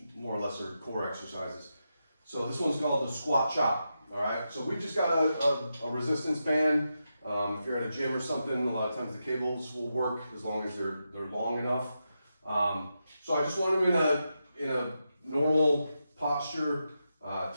more or less are core exercises. So this one's called the squat chop, all right? So we've just got a resistance band. If you're at a gym or something, a lot of times the cables will work as long as they're long enough. So I just want him in a normal posture,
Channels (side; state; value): both; inverted; correlation -0.87